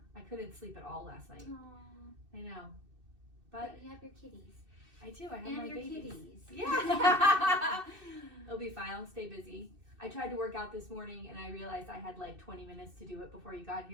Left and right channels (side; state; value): left; late; 2.6 ms